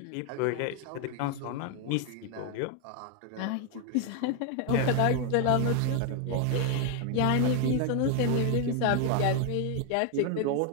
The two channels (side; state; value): both; different; correlation 0.01